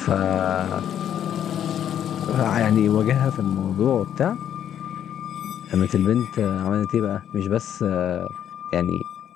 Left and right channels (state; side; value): quieter; right; 9.9 dB